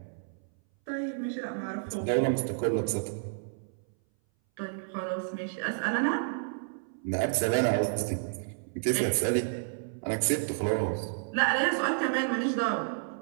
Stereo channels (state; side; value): silent; left; 57 dB below the other